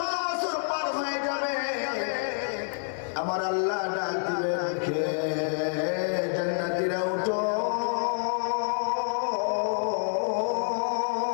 বছর পার হয়ে যাবে। আমার আল্লাহ ডাক দিবেন, কে জান্নাতীরা উঠো,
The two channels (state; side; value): silent; right; 59 dB below the other